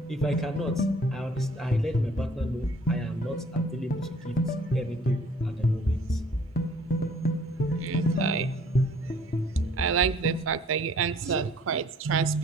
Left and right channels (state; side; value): normal; both; correlation 0.56